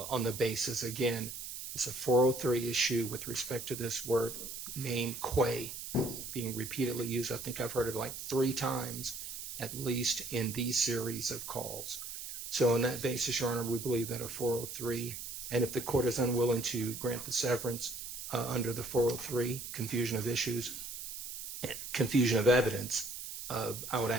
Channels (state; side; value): noise; right; hiss, 8 dB below the sound